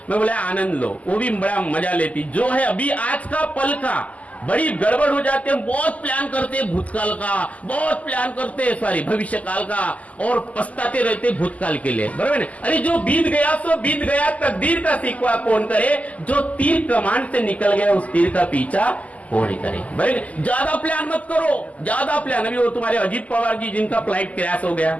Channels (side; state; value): right; late; 0.072 ms